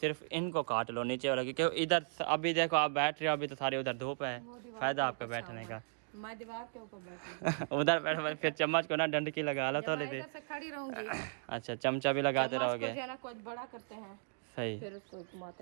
इनको काट लो नीचे वाला, क्योंकि इधर अभी देखो आप बैठ रहे हो, अभी तो सारी उधर धूप है, फायदा आपका बैठने का। मैं दीवार के ऊपर बैठी उधर बैठ फिर चम्मच को ना डंडकी लगा लो थोड़ी देर। से खड़ी रहूंगी। अच्छा चमचा भी लगाते रहोगे, जो है ना कुछ बड़ा करते हैं सही। फिर उसको घुमाते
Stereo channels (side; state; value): left; silent; digital silence